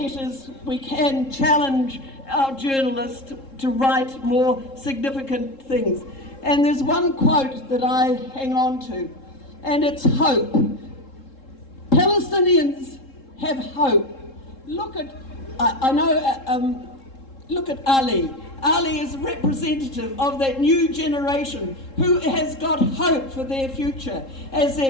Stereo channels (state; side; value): late; right; 3.7 ms